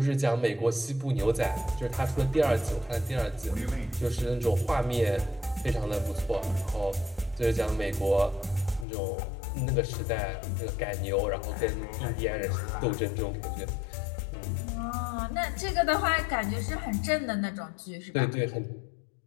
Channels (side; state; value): right; drops out; at 8.8 s